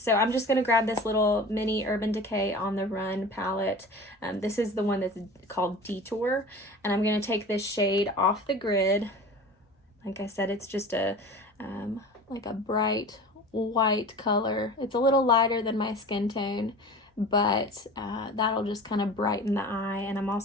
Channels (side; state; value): both; normal; correlation 0.37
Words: I'm just going to grab this little mini Urban Decay On the Run palette. This is the one that's called Detour, and I'm going to take this shade off the grid. Like I said, it's just a like a bright white color. It's a little lighter than my skin tone, but that'll just kind of brighten the eye. And I'm